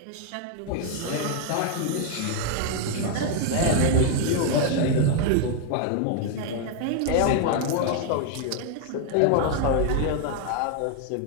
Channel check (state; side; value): different; both; correlation 0.00